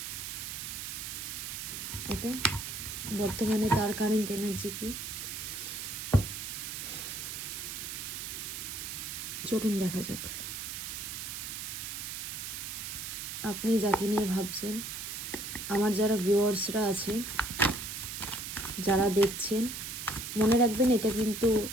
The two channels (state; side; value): noise; right; hiss, 6 dB below the sound